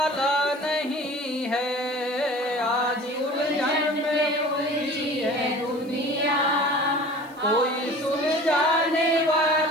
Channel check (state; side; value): noise; left; hiss, 28 dB below the sound